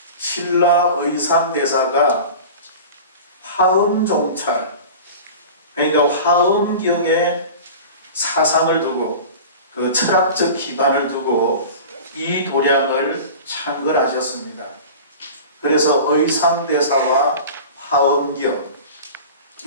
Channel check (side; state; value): both; inverted; correlation -0.36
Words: 신라 의상대사가 화엄종찰, 그러니까 화엄경에 사상을 두고 그 철학적 기반을 두고 이 도량을 창건하셨습니다. 그래서 의상대사와 화엄경이라고